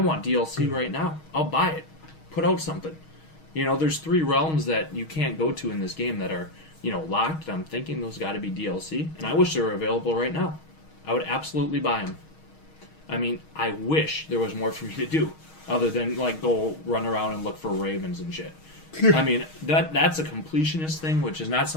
DLC right now. I'll buy it. Put out something. There's 3 realms that you can't go to in this game that are, locked. I'm thinking those got to be DLC, and I wish they were available right now. I would absolutely buy them. I mean, I wish there was more for me to do, other than, go run around and look for ravens and shit. I mean, that's a completionist thing, which is not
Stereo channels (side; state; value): right; late; 6.3 ms